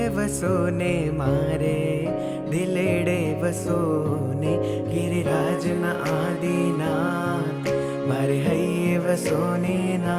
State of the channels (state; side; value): identical; both; correlation 1.00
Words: વસોને મારે દિલેડે વસોને ગિરિરાજના આદિનાથ મારે હૈયે વસોને